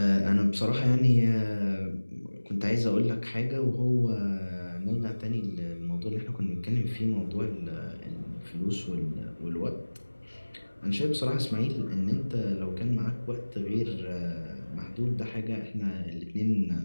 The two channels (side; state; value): both; inverted; correlation -1.00